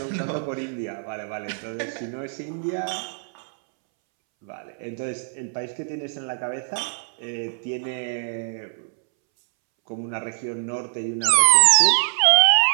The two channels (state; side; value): silent; left; 63 dB below the other